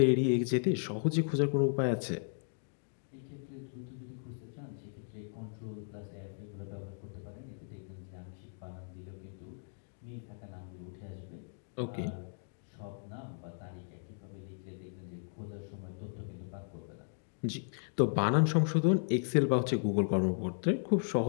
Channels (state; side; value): silent; right; digital silence